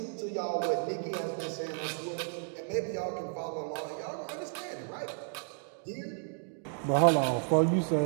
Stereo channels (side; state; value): left; silent; 56 dB below the other